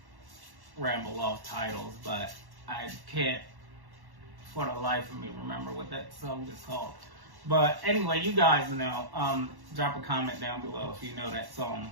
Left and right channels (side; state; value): left; late; 1.1 ms